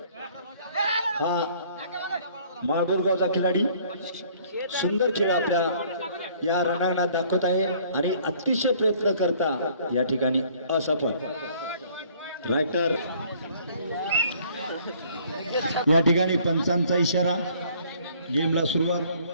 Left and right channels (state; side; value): inverted; both; correlation -0.58